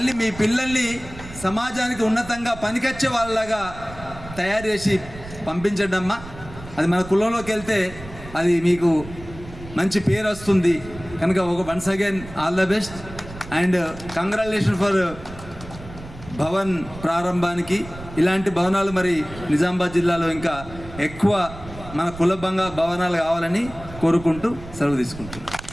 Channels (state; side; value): noise; right; rumble, 15 dB below the sound